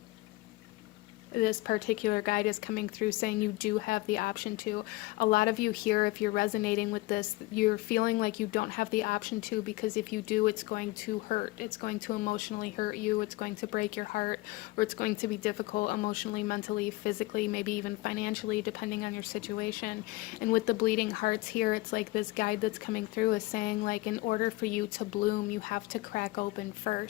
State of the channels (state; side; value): quieter; right; 20.5 dB